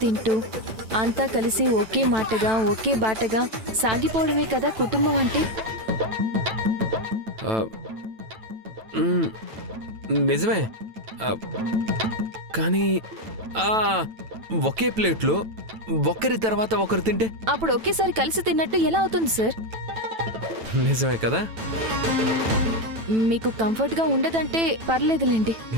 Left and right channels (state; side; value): late; left; 9.1 ms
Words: తింటూ అంతా కలిసి ఒకే మాటగా ఒకే బాటగా సాగిపోవడమే కదా కుటుంబం అంటే. నిజమే, కానీ ఒకే ప్లేట్లో ఒకరి తర్వాత ఒకరు తింటే అప్పుడు ఒకేసారి కలిసి తిన్నట్టు ఎలా అవుతుంది సార్? నిజమే కదా. మీకు కంఫర్ట్గా ఉండదంటే పర్లేదులేండి.